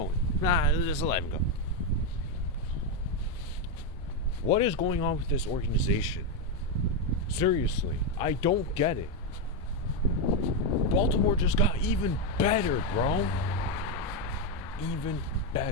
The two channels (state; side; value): normal; both; correlation 0.05